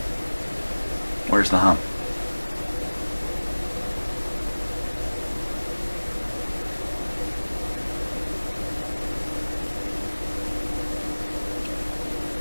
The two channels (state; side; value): inverted; both; correlation -1.00